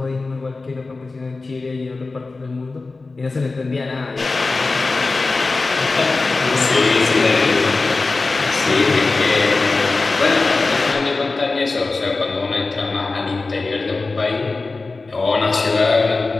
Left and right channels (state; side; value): quieter; right; 3.7 dB